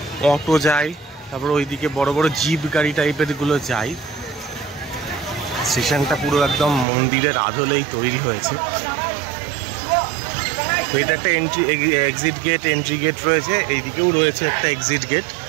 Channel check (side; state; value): left; drops out; at 6.9 s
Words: অটো যায়, তারপর ওইদিকে বড় বড় জিপ গাড়ি টাইপের গুলো যায়। স্টেশনটা পুরো একদম মন্দিরের আদলেই তৈরি হয়েছে। তো এটা একটা এক্সিট গেট, এন্ট্রি গেট রয়েছে। এইদিকেও রয়েছে একটা এক্সিট গেট।